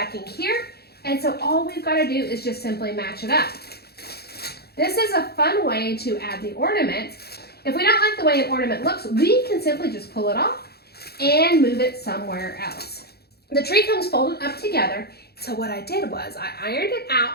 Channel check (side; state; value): right; late; 0.46 ms